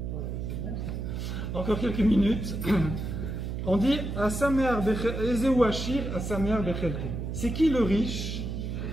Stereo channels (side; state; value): right; noise; hum, 4 dB below the sound